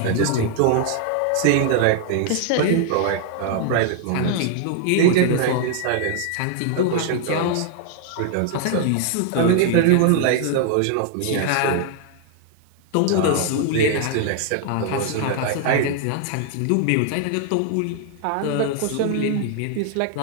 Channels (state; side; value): different; both; correlation 0.00